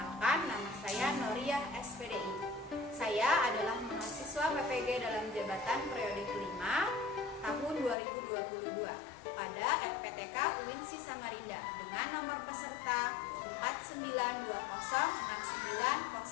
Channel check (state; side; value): drops out; right; at 8.0 s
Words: nama saya Noriah SPDI. Saya adalah mahasiswa PPG dalam jabatan periode kelima tahun 2022 pada FPTK UINSI Samarinda dengan nomor peserta